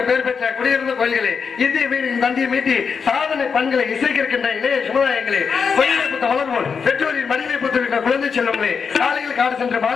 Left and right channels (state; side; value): quieter; right; 5.9 dB